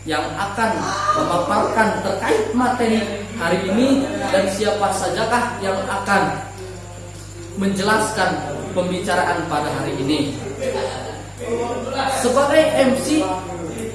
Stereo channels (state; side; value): identical; both; correlation 1.00